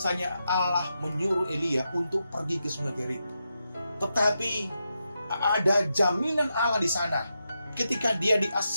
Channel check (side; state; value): both; inverted; correlation -0.86